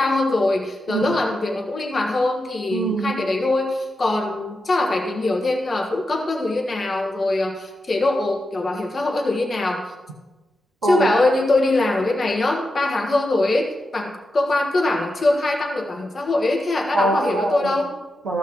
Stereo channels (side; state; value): both; normal; correlation 0.89